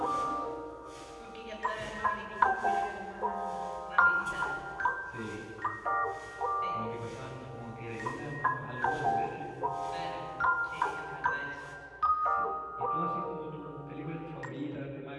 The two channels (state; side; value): identical; both; correlation 1.00